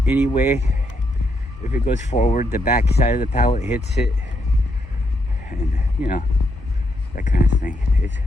anyway. If it goes forward, the back side of the pallet hits it, and you know, that kind of thing.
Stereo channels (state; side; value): normal; both; correlation 0.78